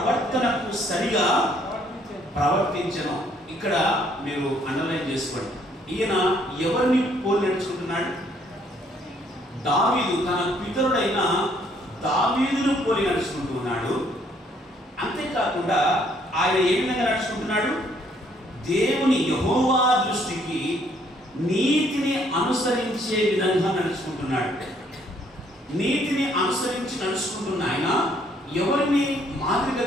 ప్రవర్తనకు సరిగా ప్రవర్తించను. ఇక్కడ మీరు అండర్లైన్ చేసుకోండి. ఈయన ఎవరిని పోలి నడుచుకుంటున్నాడు? దావీదు, తన పితరుడైన దావీదును పోలి నడుచుకుంటున్నాడు. అంతేకాకుండా ఆయన ఏ విధంగా నడుచుకుంటున్నాడు? దేవుని యెహోవా దృష్టికి నీతిని అనుసరించే విధంగా నడుచుకుంటున్నాడు. నీతిని అనుసరించి నడుచుకుంటున్న ఆయన ఎవరిని మాదిరిగా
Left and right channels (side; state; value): both; normal; correlation 0.66